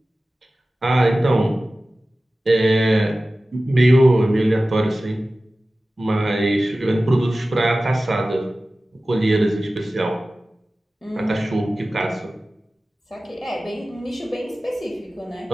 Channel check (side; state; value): both; normal; correlation 0.96